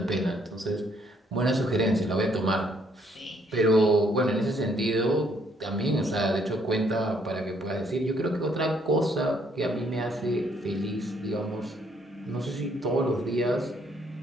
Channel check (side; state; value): both; normal; correlation 0.68